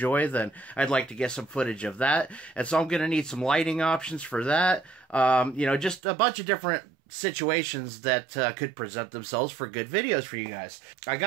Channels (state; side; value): drops out; left; at 6.0 s